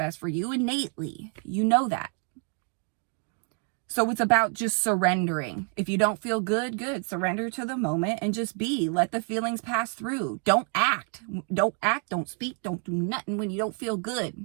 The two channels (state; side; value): quieter; left; 38.5 dB